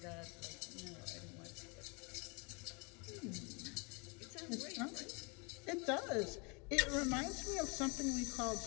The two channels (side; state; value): right; quieter; 31.3 dB